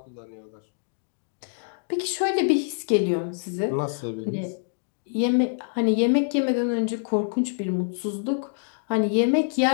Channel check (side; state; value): right; silent; digital silence